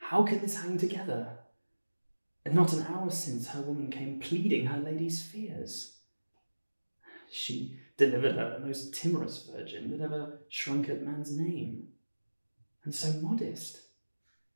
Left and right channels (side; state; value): both; inverted; correlation -1.00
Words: can this hang together? And not an hour since her woman came pleading her lady's fears. She delivered her the most timorous virgin that ever shrunk at man's name, and so modest.